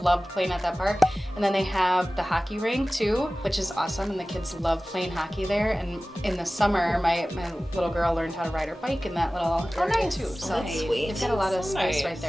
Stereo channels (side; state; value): both; normal; correlation 0.97